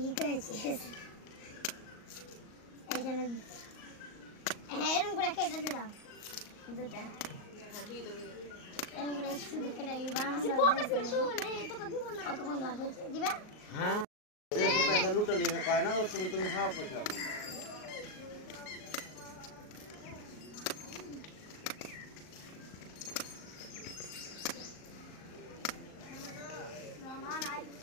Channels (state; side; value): late; right; 38 ms